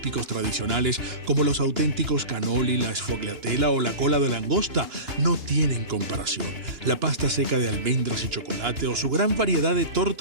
tradicionales, como los auténticos cannoli, la sfogliatella o la cola de langosta, no tienen comparación. La pasta seca de almendras y chocolate o su gran variedad de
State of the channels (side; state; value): left; late; 2.9 ms